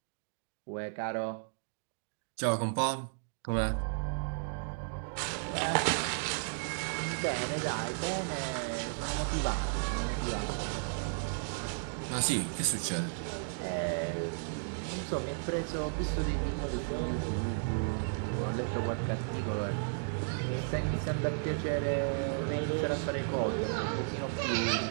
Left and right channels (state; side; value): silent; left; digital silence